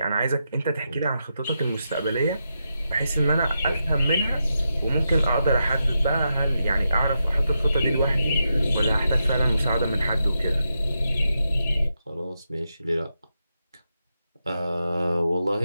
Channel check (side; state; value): both; inverted; correlation -0.86